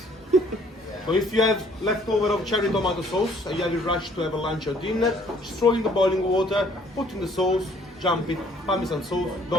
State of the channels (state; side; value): normal; both; correlation 0.60